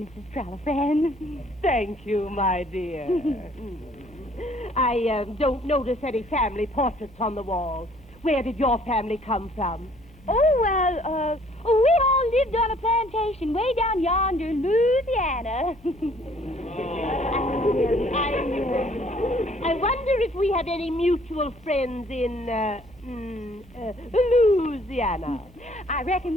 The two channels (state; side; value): normal; both; correlation 0.59